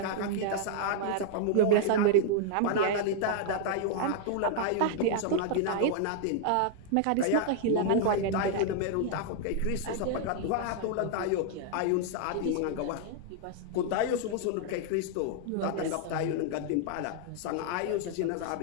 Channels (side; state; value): both; different; correlation -0.01